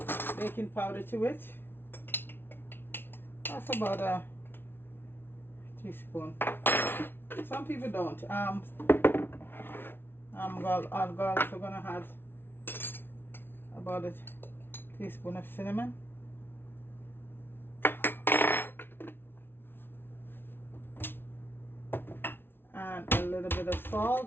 powder to it. That's about a teaspoon. Some people don't. I'm also gonna add about a teaspoon of cinnamon. And a little bit of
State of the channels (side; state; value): right; late; 0.11 ms